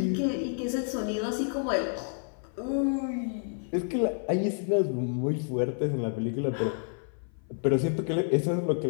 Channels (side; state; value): right; silent; 55 dB below the other